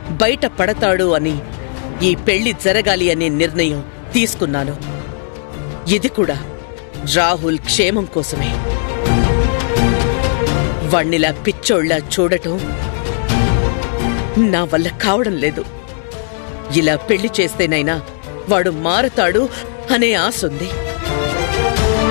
బయట పడతాడు అని ఈ పెళ్లి జరగాలి అనే నిర్ణయం తీసుకున్నాను. ఇది కూడా రాహుల్ క్షేమం కోసమే. వాణ్ణిలా పిచ్చోళ్లా చూడటం నా వల్ల కావడం లేదు. ఇలా పెళ్లి చేస్తేనైనా వాడు మారతాడు అనే ఆశుంది.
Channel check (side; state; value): right; silent; 67 dB below the other